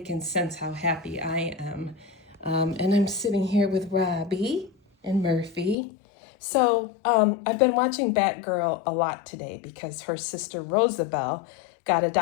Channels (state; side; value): drops out; right; at 5.8 s